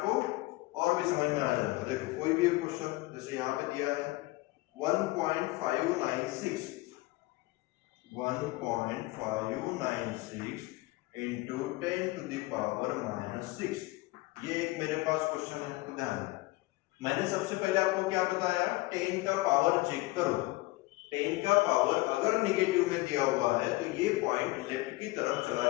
और भी समझ में आ जाएगा। देखो कोई भी एक क्वेश्चन जैसे यहाँ पे दिया है 1.596 इंटू 10 टू द पावर -6। ये एक मेरे पास क्वेश्चन है, तो ध्यान दें। मैंने सबसे पहले आपको क्या बताया, 10 का पावर चेक करो। 10 का पावर अगर नेगेटिव में दिया हुआ है तो ये पॉइंट लेफ्ट की तरफ चला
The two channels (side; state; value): right; quieter; 21.1 dB